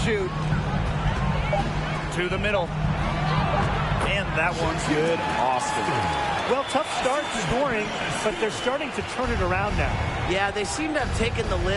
To the middle. And that one's good. Austin. Well, tough start scoring, but they're starting to turn it around now. Yeah, they seem to have taken the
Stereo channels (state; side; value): identical; both; correlation 1.00